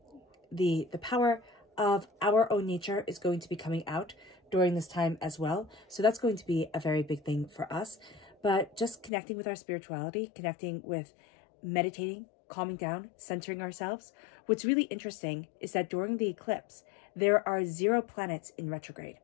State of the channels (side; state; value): right; drops out; at 9.1 s